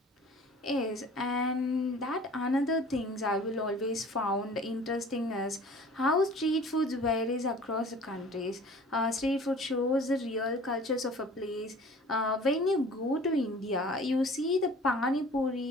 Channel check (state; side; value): normal; both; correlation 0.47